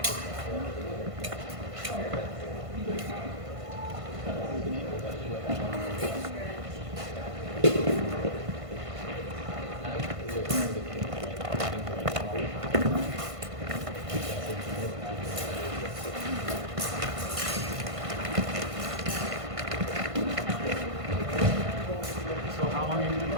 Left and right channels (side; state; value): left; late; 1.5 ms